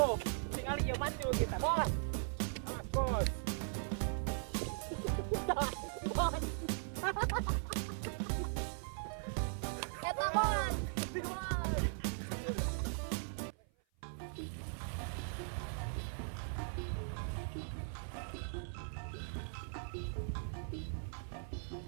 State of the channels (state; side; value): silent; left; 51 dB below the other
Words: Tinggal iya maju kita bos. Mas bos. Bos. Eta bos.